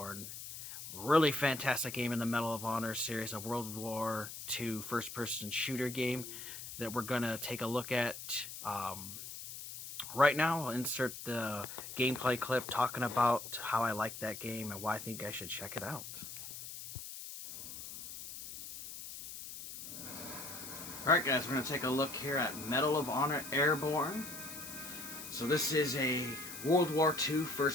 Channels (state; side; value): noise; left; hiss, 10 dB below the sound